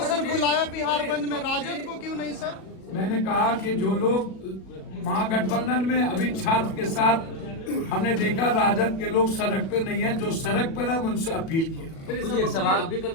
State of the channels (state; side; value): late; right; 37 ms